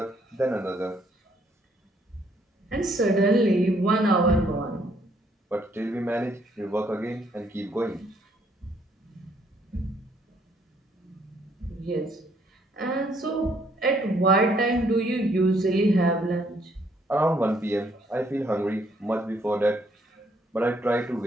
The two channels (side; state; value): both; normal; correlation 0.68